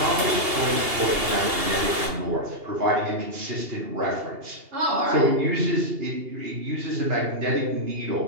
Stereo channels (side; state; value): left; late; 2.8 ms